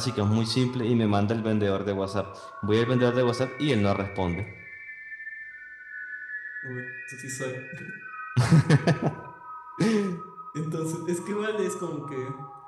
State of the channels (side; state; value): both; identical; correlation 1.00